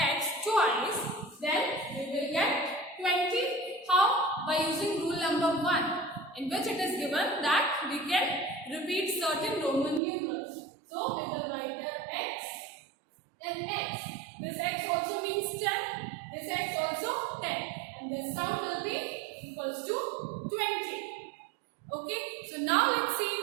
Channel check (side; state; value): left; drops out; at 10.0 s